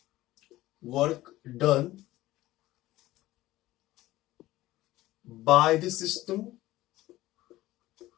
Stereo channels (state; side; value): quieter; right; 16.7 dB